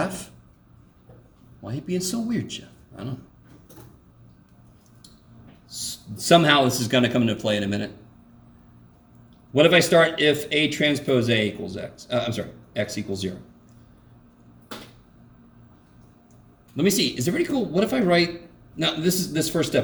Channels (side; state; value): both; identical; correlation 1.00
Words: Why are you being so weird, Jeff? I don't know. Somehow this is going to come into play in a minute. What if I start if A transpose A equals X? X equals 0. Let me see. Is it pretty cool? What if I write... Now, this first